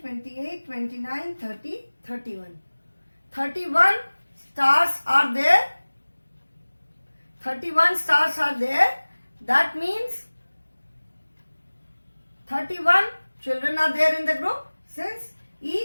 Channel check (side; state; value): both; inverted; correlation -1.00